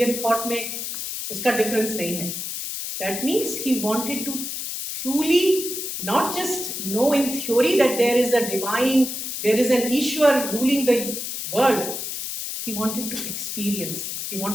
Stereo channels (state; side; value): noise; left; hiss, 5 dB below the sound